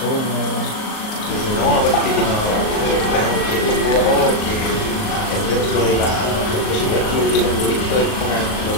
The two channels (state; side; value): late; right; 38 ms